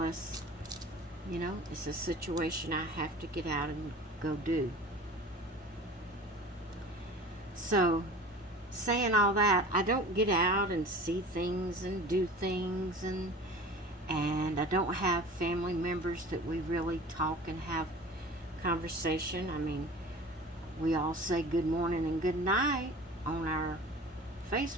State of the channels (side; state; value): both; normal; correlation 0.40